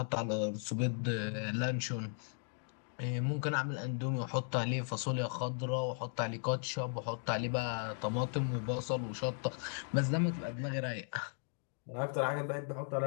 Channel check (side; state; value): right; silent; 53 dB below the other